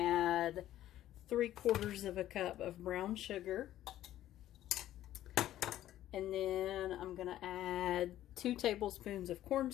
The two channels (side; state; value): right; quieter; 13.2 dB